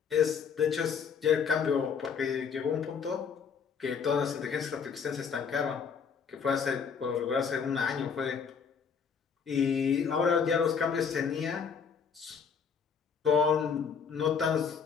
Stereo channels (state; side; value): quieter; right; 6.4 dB